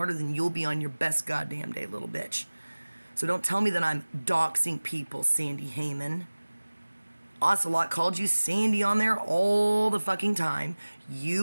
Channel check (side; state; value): both; inverted; correlation -1.00